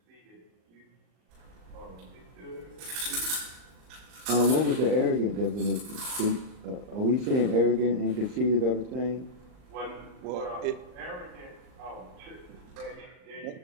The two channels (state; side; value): late; left; 39 ms